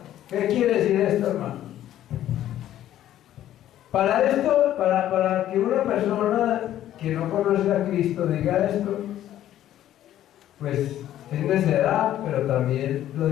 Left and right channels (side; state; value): right; quieter; 12.4 dB